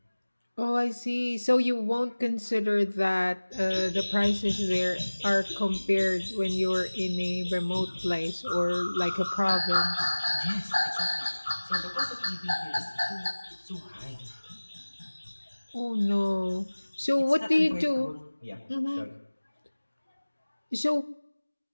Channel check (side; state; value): both; inverted; correlation -1.00